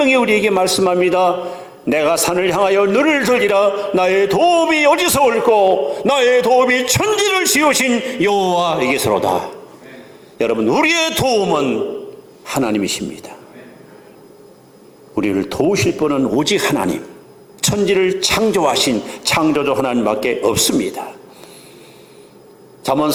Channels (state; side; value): identical; both; correlation 1.00